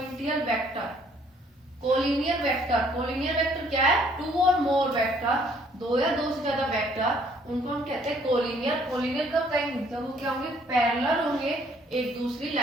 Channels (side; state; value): both; normal; correlation 0.62